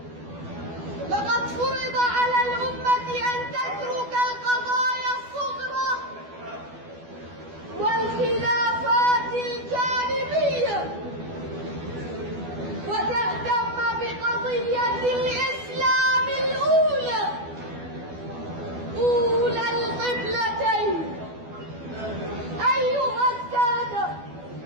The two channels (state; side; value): late; left; 12 ms